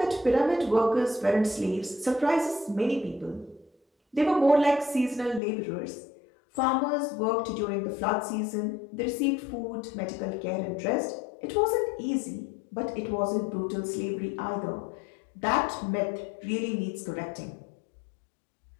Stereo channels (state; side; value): drops out; right; at 5.4 s